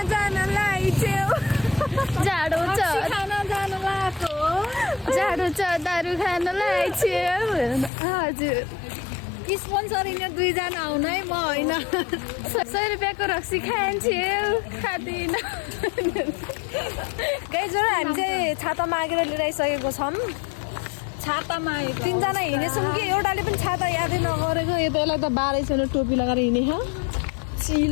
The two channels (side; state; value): right; drops out; at 7.9 s